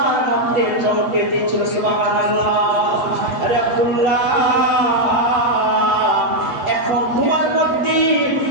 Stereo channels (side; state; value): left; late; 7.8 ms